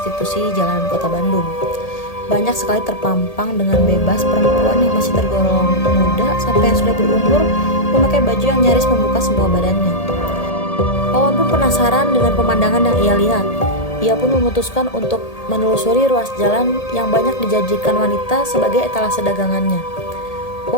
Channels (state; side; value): late; right; 1.8 ms